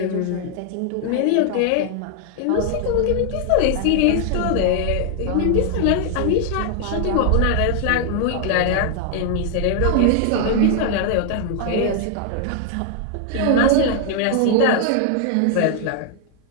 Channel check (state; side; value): different; both; correlation 0.00